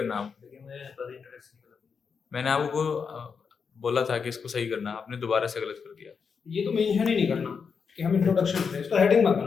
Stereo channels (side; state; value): right; quieter; 5.9 dB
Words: आप, मैंने आपको बोला था कि इसको सही करना, आपने दोबारा से गलत कर दिया। ये तो मेंशन ही नहीं करना कि हम इंट्रोडक्शन करें, इसको हेडिंग मत